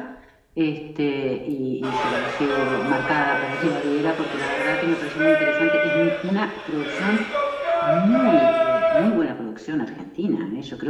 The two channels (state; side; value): identical; both; correlation 1.00